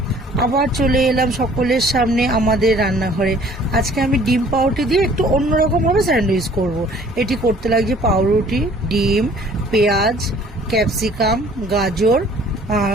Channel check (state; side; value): normal; both; correlation 0.54